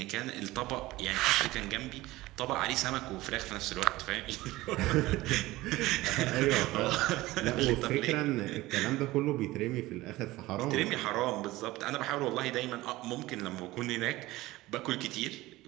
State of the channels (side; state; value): left; quieter; 18.4 dB